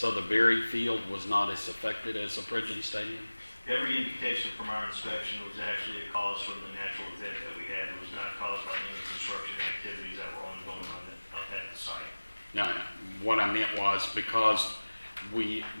the Berry Field was not as affected as the Pridgeon Stadium? Every indication from our inspection was actually a cause from the natural event that we had. It was not caused by any construction activities that were ongoing at the site. No, what I meant was because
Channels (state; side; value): inverted; both; correlation -1.00